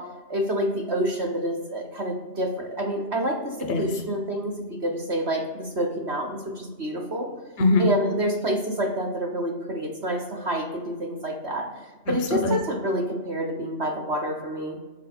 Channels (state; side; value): late; left; 3.1 ms